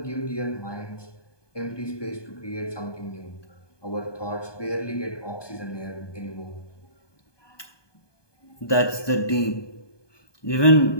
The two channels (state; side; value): late; right; 1.2 ms